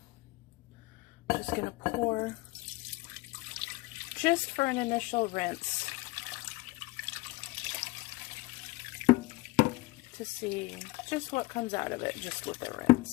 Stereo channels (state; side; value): quieter; right; 21.5 dB